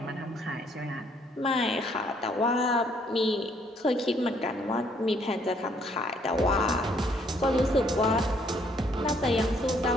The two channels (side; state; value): both; normal; correlation 0.66